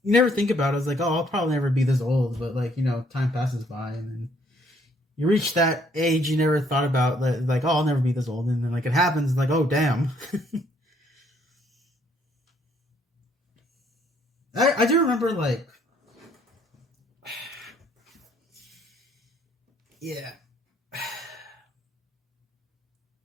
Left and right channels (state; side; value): normal; both; correlation 0.66